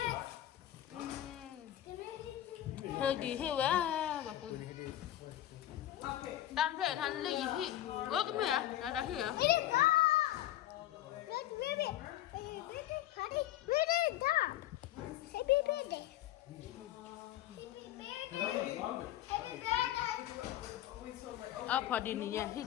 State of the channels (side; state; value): right; quieter; 13.2 dB